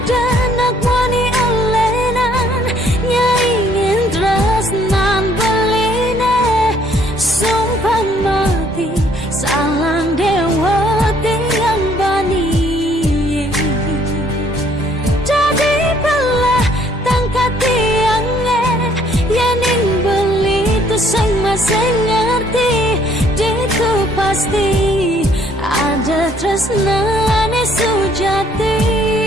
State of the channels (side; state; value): both; normal; correlation 0.63